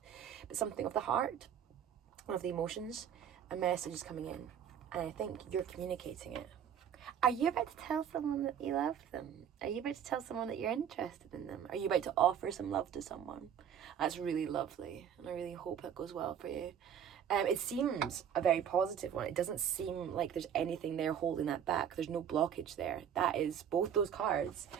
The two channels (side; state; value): left; quieter; 8.8 dB